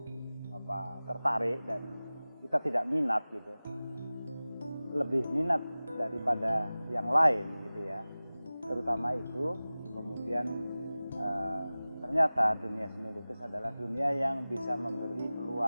tertarik dan kita tidak minat gitu, lebih minat daripada yang lain gitu ya, terutama itu. Kemudian ternyata dunia seni lukis adalah dunia yang bisa memberi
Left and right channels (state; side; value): inverted; both; correlation -0.98